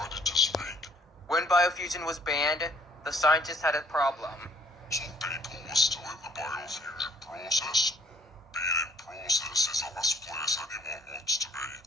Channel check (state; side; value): normal; both; correlation 0.60